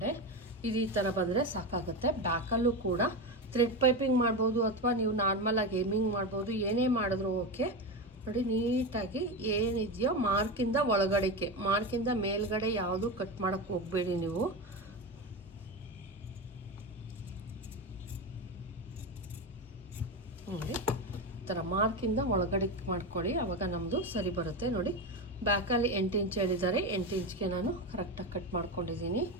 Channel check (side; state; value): both; normal; correlation 0.18